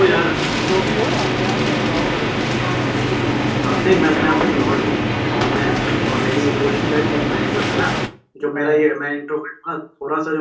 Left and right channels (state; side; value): identical; both; correlation 1.00